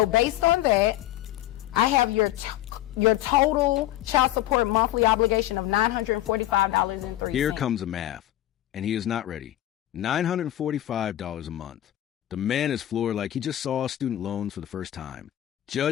based on that, I have your total child support monthly obligation of $945.03. Here comes the math, and he is not ready. $945 a month. The man is floored like he just saw student loans for the first time.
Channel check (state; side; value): quieter; right; 14.0 dB